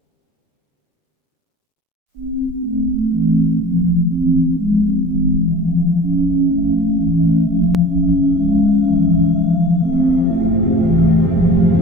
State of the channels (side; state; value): both; normal; correlation 0.41